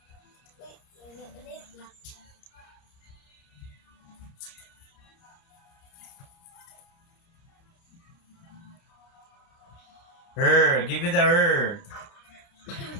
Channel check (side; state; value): right; late; 29 ms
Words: Her. Give me the her.